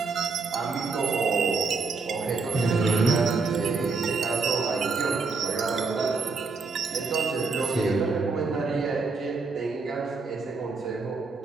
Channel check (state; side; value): quieter; left; 4.3 dB